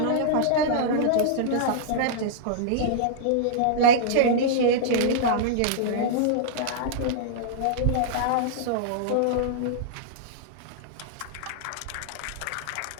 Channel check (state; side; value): different; both; correlation -0.02